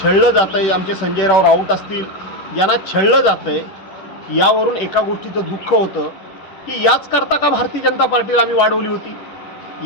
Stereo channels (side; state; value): right; late; 10 ms